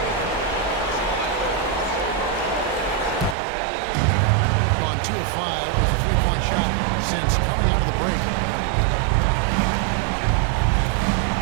Gone 2 of 5 with a 3-point shot since coming out of the break.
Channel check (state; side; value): drops out; left; at 3.4 s